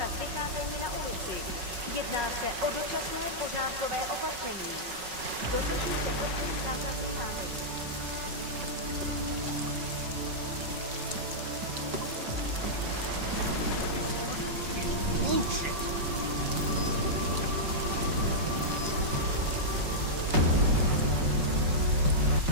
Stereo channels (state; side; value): late; left; 5.4 ms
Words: vycházení na ulici. Jedná se o dočasné pořádkové opatření. Dodržujte prosím zákaz vycházení. Bullshit!